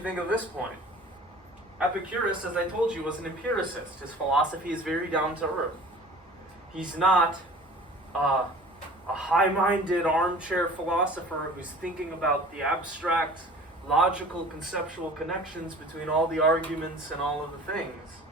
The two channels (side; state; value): both; normal; correlation 0.45